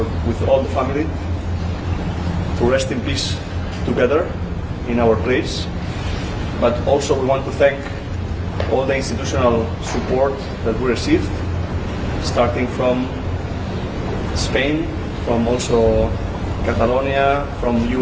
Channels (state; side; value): identical; both; correlation 1.00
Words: with all the family, to rest in peace together in our place. But also we want to thank all the institutional support that we received, starting from Spain, from also Catalonia, from